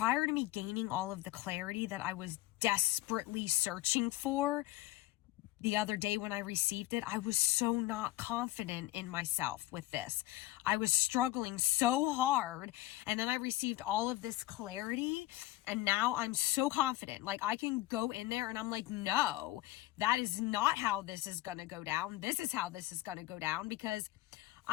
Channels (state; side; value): quieter; right; 16.8 dB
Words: to me gaining all of the clarity that I was desperately searching for, the other day when I received it, I was so not confident in myself with this. I was struggling so hard, and then I received all of this clarity, and now I'm so confident. Like, I can go in there and I'm like, no, that is not how this is going to go down. This is how this is going to go down, because